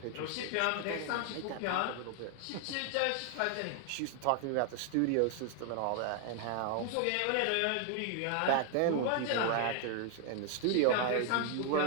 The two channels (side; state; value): both; different; correlation 0.00